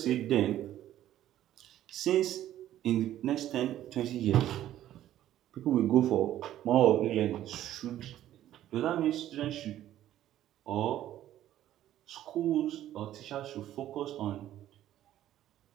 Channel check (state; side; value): quieter; left; 12.6 dB